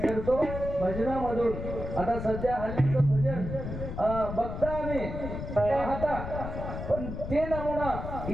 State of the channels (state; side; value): noise; left; rumble, 6 dB below the sound